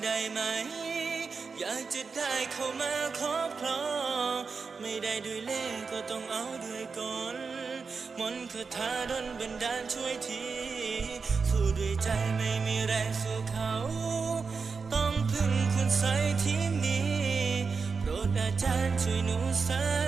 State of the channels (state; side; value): quieter; left; 5.0 dB